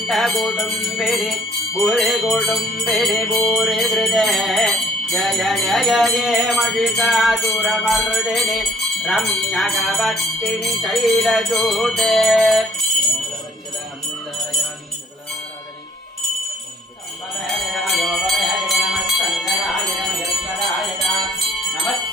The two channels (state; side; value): normal; both; correlation 0.60